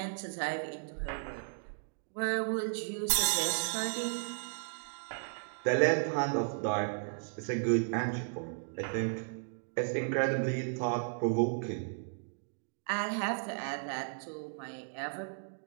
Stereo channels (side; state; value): left; silent; digital silence